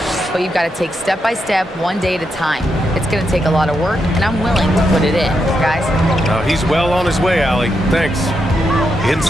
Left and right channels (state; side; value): normal; both; correlation 0.83